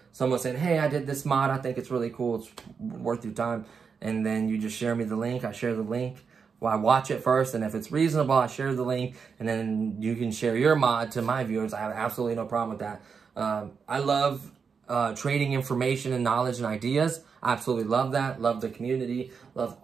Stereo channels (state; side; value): quieter; left; 5.8 dB